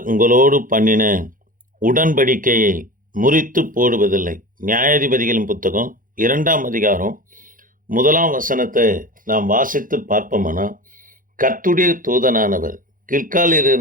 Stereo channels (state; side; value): late; left; 0.40 ms